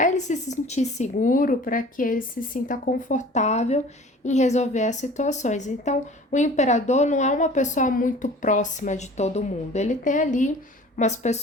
ele se sentir seguro, para que ele se sinta confortável em resolver as situações. Então, o imperador não é uma pessoa muito próxima de todo mundo. Ele tem ali umas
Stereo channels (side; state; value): both; normal; correlation 0.45